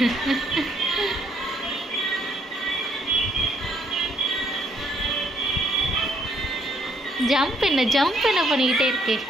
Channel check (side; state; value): both; normal; correlation 0.69